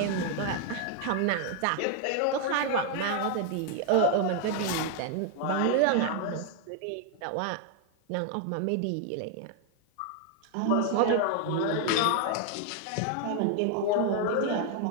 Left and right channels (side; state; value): both; different; correlation 0.00